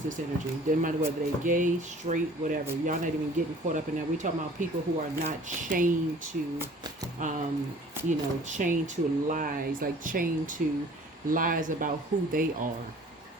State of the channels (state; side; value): normal; both; correlation 0.50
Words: energy. Doesn't matter whether they're gay, straight, whatever. Y'all not even getting caught up in that. We're talking about people who are not chained to, chained to lies, like chained to lies about who they are.